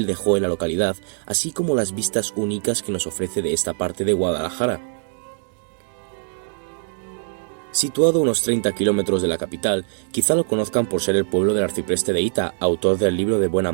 dejó en la localidad, así como las vistas únicas que nos ofrece de esta parte de Guadalajara. Situado a unos 30 kilómetros de la capital, quizá lo conozcan por ser el pueblo del arcipreste de Ita, autor del libro de Buen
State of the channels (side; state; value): left; silent; digital silence